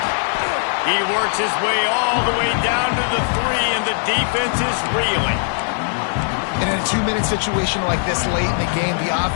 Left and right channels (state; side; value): silent; right; digital silence